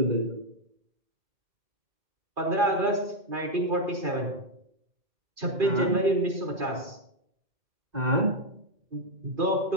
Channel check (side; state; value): left; late; 2.5 ms